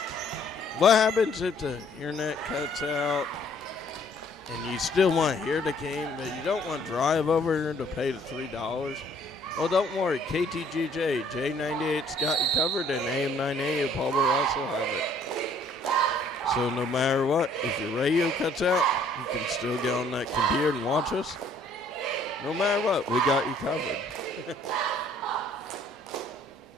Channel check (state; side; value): normal; both; correlation 0.60